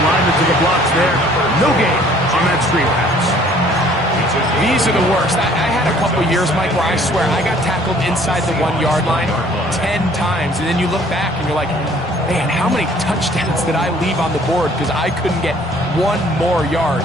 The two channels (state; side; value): normal; both; correlation 0.57